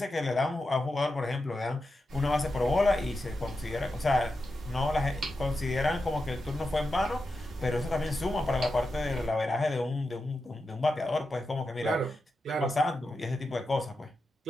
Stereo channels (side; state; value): both; normal; correlation 0.89